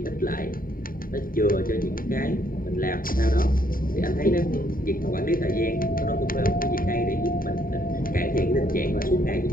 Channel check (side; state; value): right; late; 0.41 ms